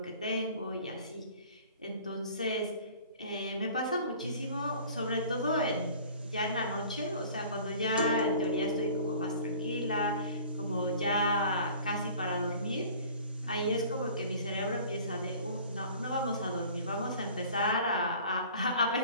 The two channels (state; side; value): inverted; both; correlation -0.47